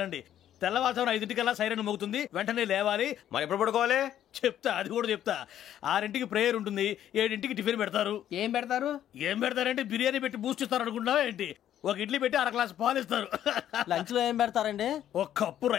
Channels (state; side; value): quieter; right; 11.1 dB